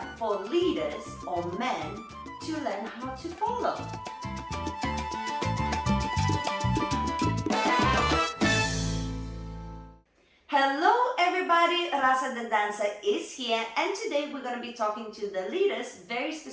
for leaders or men to learn how to follow? Hello everybody, Rasa the dancer is here, and today we're going to be talking to the leaders, very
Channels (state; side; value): identical; both; correlation 1.00